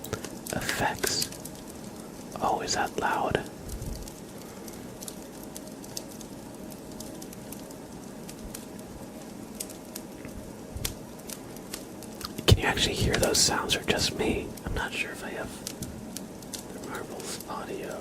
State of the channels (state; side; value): identical; both; correlation 1.00